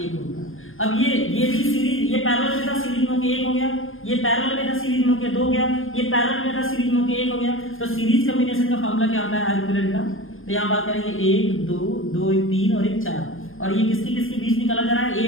ओम का। अब ये भी सीरीज, ये पैरेलल में था, सीरीज में होके 1 हो गया, ये पैरेलल में था, सीरीज में होके 2 हो गया, ये पैरेलल में था, सीरीज में होके 1 हो गया। तो सीरीज कॉम्बिनेशन का फार्मूला क्या होता है, R इक्विवेलेंट का। तो यहाँ बात करेंगे 1 2 2 3 और 1 4, और ये किसके बीच निकाला जा रहा है,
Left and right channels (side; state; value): right; late; 0.59 ms